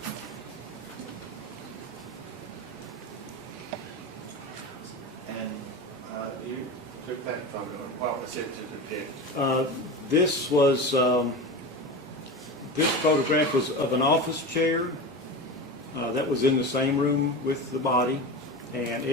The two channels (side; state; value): both; normal; correlation 0.26